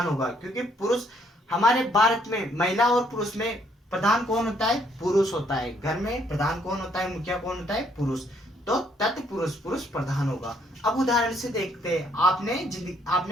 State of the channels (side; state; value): both; normal; correlation 0.68